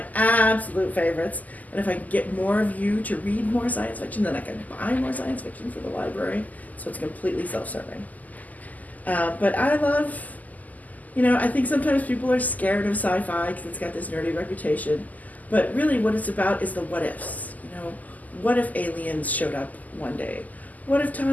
absolute favorites. And if I can get more of you to read more science fiction, then I can buy more science fiction for the library, so it's completely self-serving. But I love, I think sometimes people are scared of sci-fi because it's got this nerdy reputation. But really, what it's about is the what ifs. What if aliens showed up one day? What if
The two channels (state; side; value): late; right; 0.079 ms